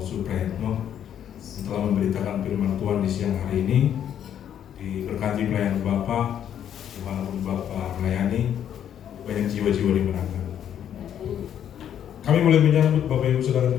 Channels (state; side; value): quieter; right; 9.7 dB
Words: setelah memberitakan firman Tuhan di siang hari ini. Diberkati pelayan Bapak, dimanapun Bapak melayani, banyak jiwa-jiwa dimenangkan. Kami mulai menyambut Bapak Ibu Saudara